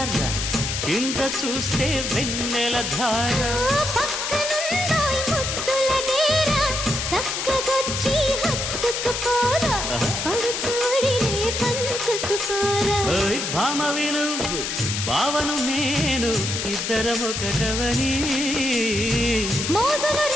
కింద చూస్తే వెన్నెల ధార. పక్కనుందోయ్ ముద్దుల డేరా, చక్కగొచ్చి హత్తుకుపోరా, పడు చూడినే పంచుకుపోరా. భామ విలువు భావను నేను, ఇద్దరమొకటవని మోజులు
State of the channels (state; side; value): noise; left; hiss, 2 dB below the sound